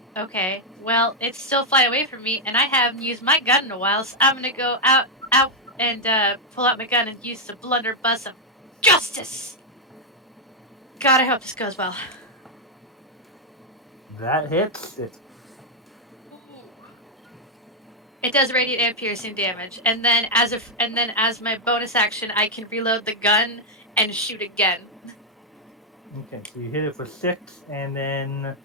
Okay. Well, it's still flying away from me, and I haven't used my gun in a while, so I'm gonna go out, and pull out my gun and use the blunderbuss of justice. God, I hope this goes well. That hits it. It does radiant and piercing damage, and then as my bonus action, I can reload the gun and shoot again. Okay, so you hit it for 6, and then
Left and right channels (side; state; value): both; normal; correlation -0.01